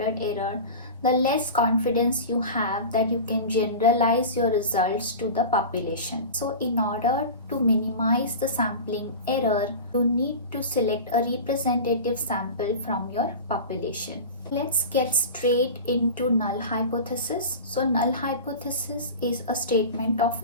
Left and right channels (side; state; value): both; inverted; correlation -0.31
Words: error, the less confidence you have that you can generalize your results to the population. So in order to minimize the sampling error, you need to select a representative sample from your population. Let's get straight into null hypothesis. So null hypothesis is a statement of